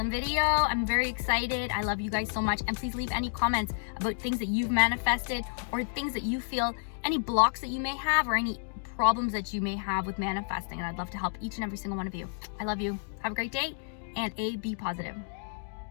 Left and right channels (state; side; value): silent; right; digital silence